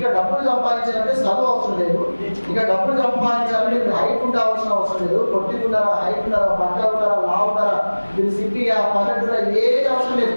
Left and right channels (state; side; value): inverted; both; correlation -1.00